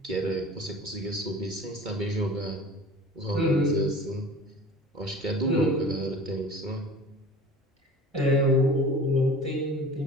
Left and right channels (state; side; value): normal; both; correlation 0.41